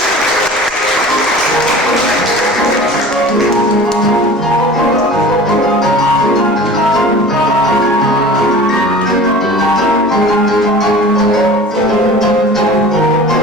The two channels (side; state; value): both; normal; correlation 0.40